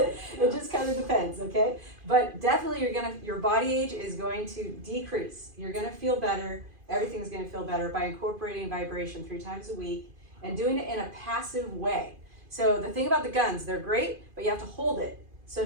it just kind of depends, okay? But definitely your body age is going to decrease. You're gonna feel better. Everything's gonna feel better by incorporating vibration 3 times a week and doing it in a passive way. So the thing about the guns, they're great, but you have to hold it. So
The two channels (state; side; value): late; left; 2.5 ms